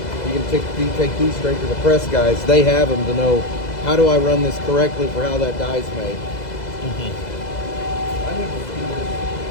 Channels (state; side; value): late; right; 2.0 ms